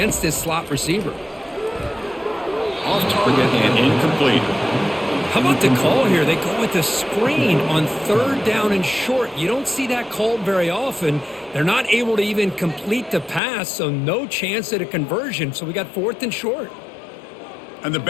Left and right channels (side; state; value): right; drops out; at 13.4 s